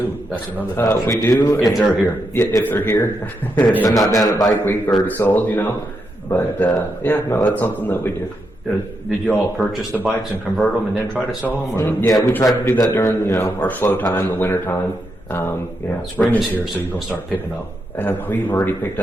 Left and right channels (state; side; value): normal; both; correlation 0.83